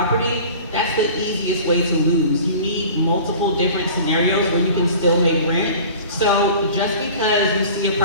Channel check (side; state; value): both; inverted; correlation -0.41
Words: that's the easiest way to lose. You need multiple different scenarios where you can still make rent. So just because you see a